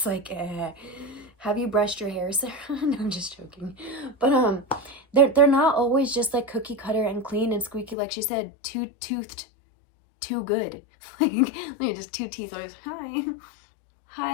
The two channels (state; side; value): drops out; right; at 8.0 s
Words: like, have you brushed your hair, Sarah? No, I'm just joking. But they're not always just like cookie cutter and clean and squeaky, like she said, two-toothed, too good. Like just two teeth always,